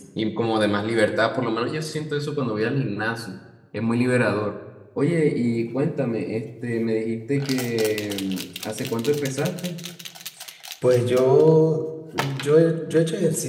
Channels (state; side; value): identical; both; correlation 1.00